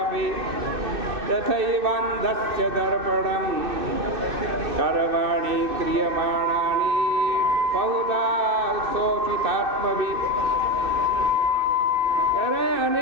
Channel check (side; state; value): left; late; 2.6 ms